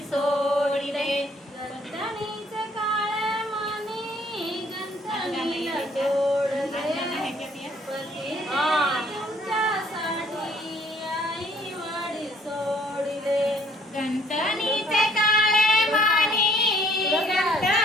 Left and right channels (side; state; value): both; normal; correlation 0.61